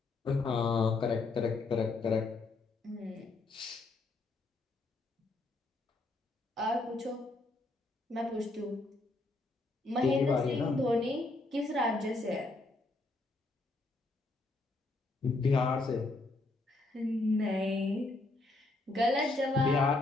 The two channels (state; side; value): quieter; right; 3.1 dB